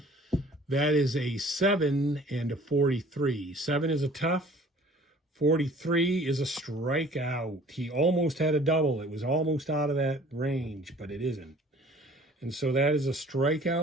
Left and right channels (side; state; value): both; normal; correlation 0.51